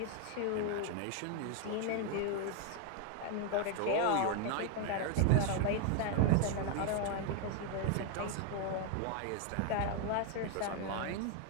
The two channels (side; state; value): both; different; correlation 0.00